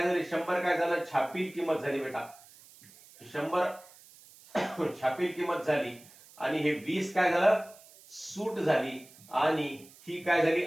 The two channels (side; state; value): right; noise; hiss, 23 dB below the sound